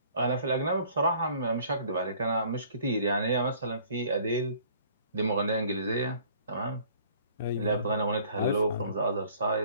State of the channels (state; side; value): inverted; both; correlation -0.55